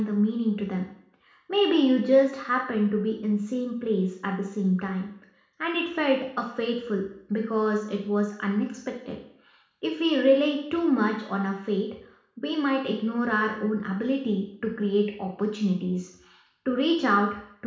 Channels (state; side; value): identical; both; correlation 1.00